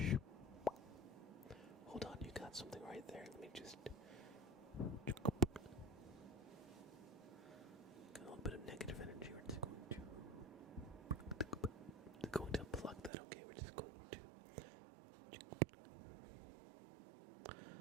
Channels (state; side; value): drops out; left; at 13.1 s